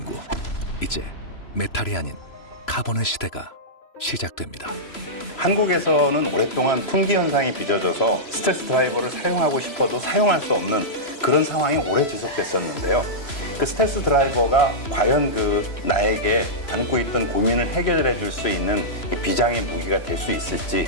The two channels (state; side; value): late; right; 3.0 ms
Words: 이제 메탈이 아닌 카본의 시대가 시작됩니다. 한국에서는 오랫동안 품귀 현상이 빚어져서 스텔스 드라이버를 사용하고 싶어도 사용할 수 없는 그런 상황이 오래 지속됐었는데요. 그 스텔스 드라이버가 과연 나에게 안고 있던 고민을 해결해 줄 수 있는 비장의 무기가 될 수 있을지